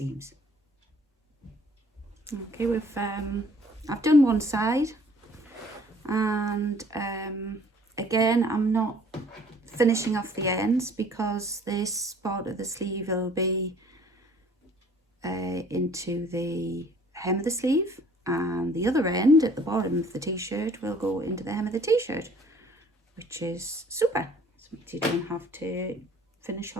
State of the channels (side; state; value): both; normal; correlation 0.55